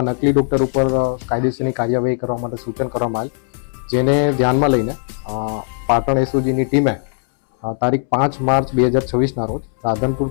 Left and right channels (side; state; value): right; silent; 67 dB below the other